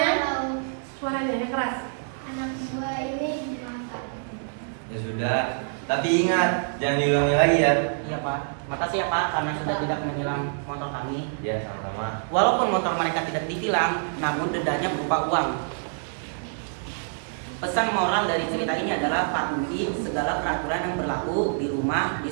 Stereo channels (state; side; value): silent; left; digital silence